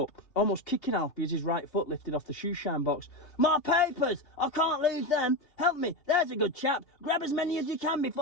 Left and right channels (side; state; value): right; late; 2.8 ms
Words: almost kicking Alfie as his right foot lifted off the shoe-shine box. "My papers! I can't lose them! Help me! There's a good chap! Grab as many as you can